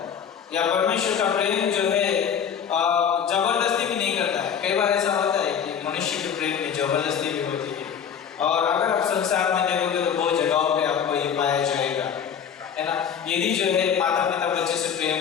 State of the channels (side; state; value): right; quieter; 7.8 dB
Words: या परमेश्वर का प्रेम जो है जबरदस्ती भी नहीं करता है। कई बार ऐसा होता है कि मनुष्य के प्रेम में जबरदस्ती भी होती है, और अगर आप संसार में देखोगे तो बहुत जगहों पे आपको ये पाया जाएगा, है ना। यदि जो है माता पिता बच्चे से